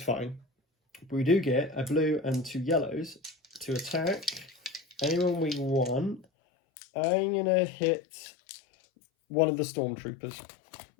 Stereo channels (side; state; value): right; drops out; at 6.2 s